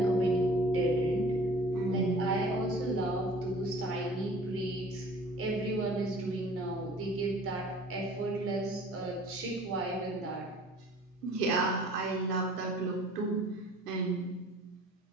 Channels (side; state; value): both; normal; correlation 0.49